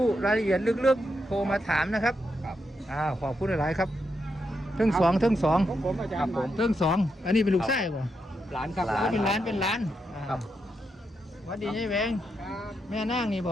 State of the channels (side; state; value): both; normal; correlation 0.83